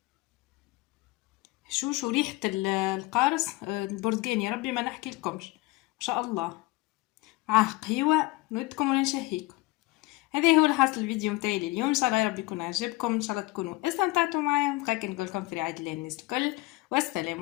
شو ريحة القارص البرتقال، يا ربي ما نحكي لكمش ما شاء الله. قهوة نودكم ولا نشهيكم. هذا هو الحاصل الفيديو متاعي اليوم، ان شاء الله يا رب يكون عجبكم، ان شاء الله تكونوا استمتعتوا معايا. بقى نقول لكم في رعاية الله الناس الكل، والسلام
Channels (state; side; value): quieter; right; 20.3 dB